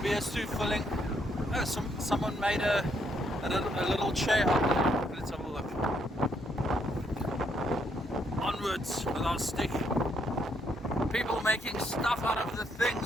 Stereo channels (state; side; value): normal; both; correlation 0.73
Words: too filling. Oh, someone made a little chair up there. Let's have a look. Onwards with our stick. People making stuff out of the